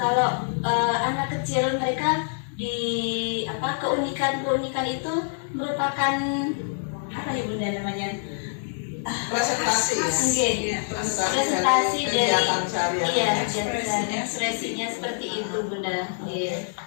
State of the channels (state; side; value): silent; right; digital silence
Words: anak kecil mereka di keunikan itu merupakan apa ya Bunda namanya? Presentasi dari sehari-hari. ekspresinya seperti itu Bunda.